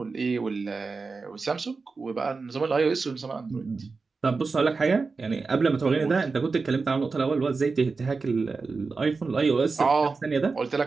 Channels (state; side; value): quieter; left; 4.3 dB